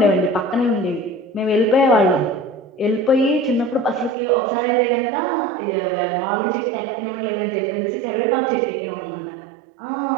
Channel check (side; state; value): left; drops out; at 4.2 s